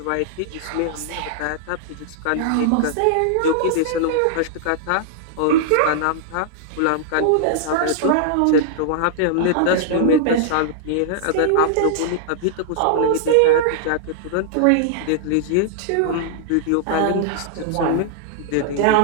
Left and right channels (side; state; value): both; different; correlation -0.01